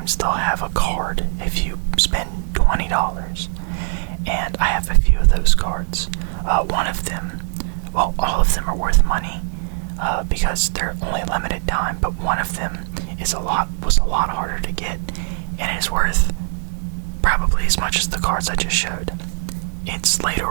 they'll have a card if you spend $20. And I have a few of those cards. One of them, well, all of them are worth money because they're only limited time, but one of them was a lot harder to get, and is worth probably as much as the cards I just showed. It's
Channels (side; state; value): left; silent; digital silence